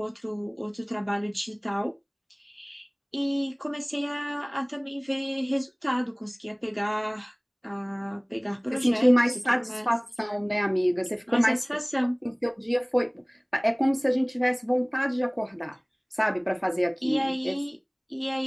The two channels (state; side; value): identical; both; correlation 1.00